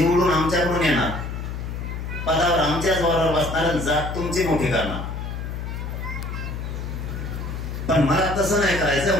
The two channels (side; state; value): left; noise; hum, 6 dB below the sound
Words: आमच्याकडून येणार पदावर आमच्याच वरावर बसणार जात तुमची मोठी करणार पण मला तसं नाही